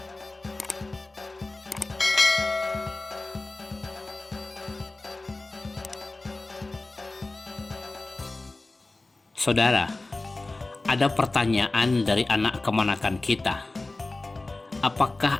Saudara, ada pertanyaan dari anak kemanakan kita. Apakah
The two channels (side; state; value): right; quieter; 3.1 dB